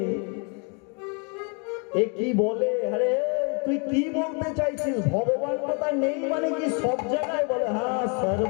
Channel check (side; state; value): right; quieter; 35.9 dB